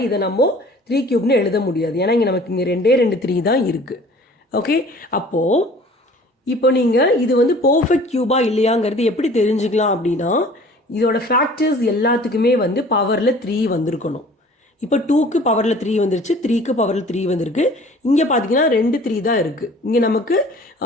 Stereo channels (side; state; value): both; normal; correlation 0.49